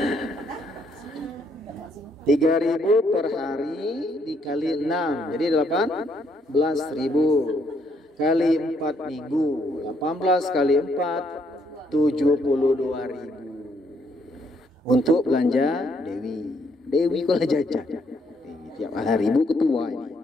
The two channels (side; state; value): both; normal; correlation 0.71